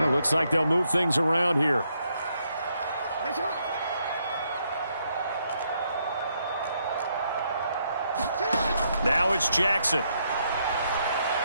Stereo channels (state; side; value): inverted; both; correlation -0.75